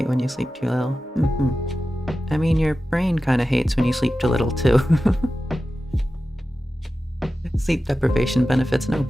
when you sleep too little. I mean, your brain kind of hates when you sleep too little, too. Sleep deprivation benefits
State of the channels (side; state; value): both; normal; correlation 0.94